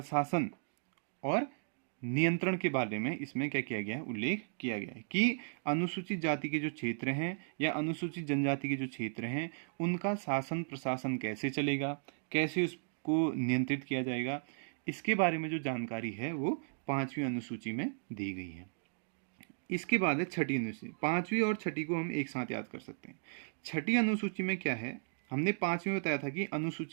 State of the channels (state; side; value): silent; left; digital silence